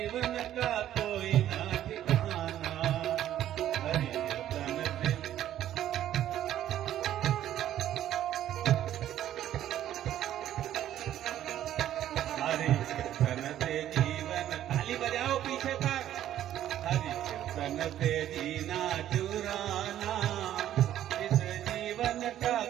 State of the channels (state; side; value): quieter; left; 11.9 dB